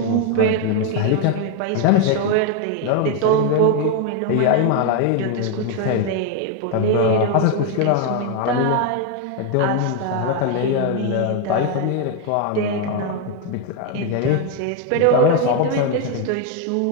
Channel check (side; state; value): both; different; correlation 0.01